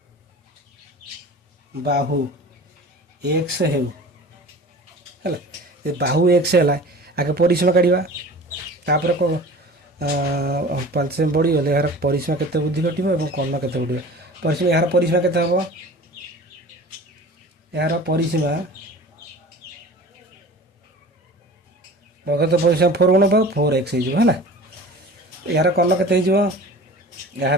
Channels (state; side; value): normal; both; correlation 0.41